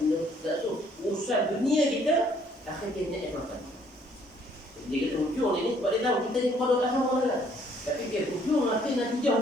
tu urusan dunia kita akhir dia niat makan. Dia kata hujung ni sebab dia tahu kita ni kepada kat sama lah. Tapi dia hujung nanti natijah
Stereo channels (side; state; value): both; normal; correlation 0.63